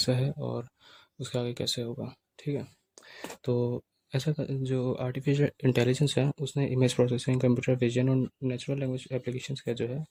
है और उसके आगे कैसे होगा। ठीक है, तो जो आर्टिफिशियल इंटेलिजेंस है उसने इमेज प्रोसेसिंग, कंप्यूटर विजन और नेचुरल लैंग्वेज एप्लीकेशंस का जो है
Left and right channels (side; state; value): both; identical; correlation 1.00